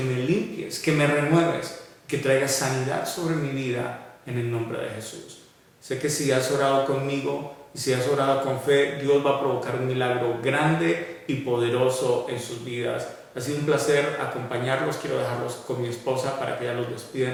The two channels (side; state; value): both; identical; correlation 1.00